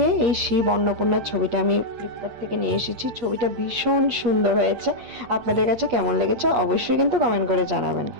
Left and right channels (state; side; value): late; left; 8.4 ms